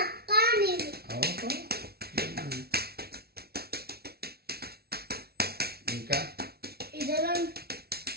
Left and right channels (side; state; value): left; late; 0.45 ms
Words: అక్క నేను. ఇంకా